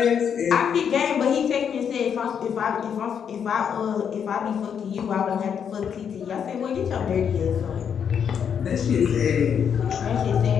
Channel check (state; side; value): quieter; right; 7.7 dB